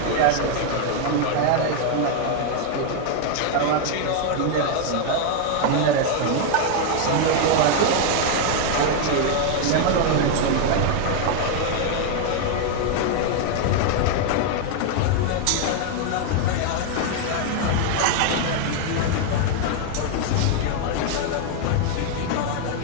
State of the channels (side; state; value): both; different; correlation 0.00